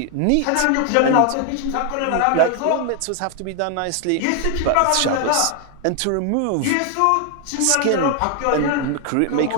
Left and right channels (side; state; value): both; different; correlation 0.00